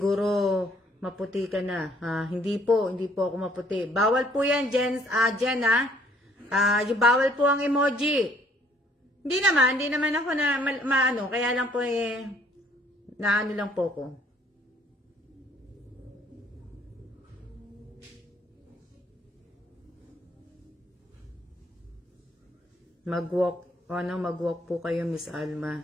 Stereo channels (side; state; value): both; normal; correlation 0.63